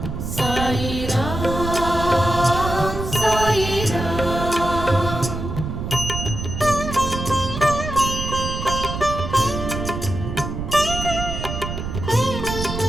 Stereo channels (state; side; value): noise; right; rumble, 5 dB below the sound